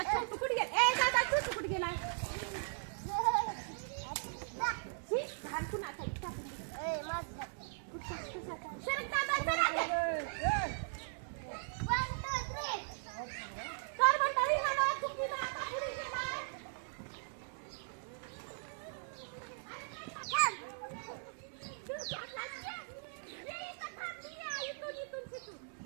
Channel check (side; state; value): left; silent; digital silence